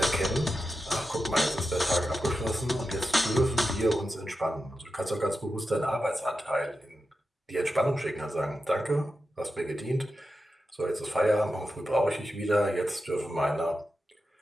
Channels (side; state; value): both; normal; correlation 0.90